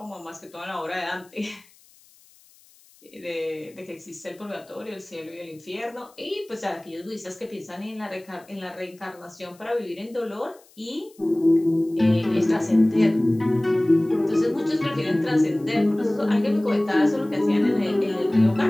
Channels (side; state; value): left; noise; hiss, 28 dB below the sound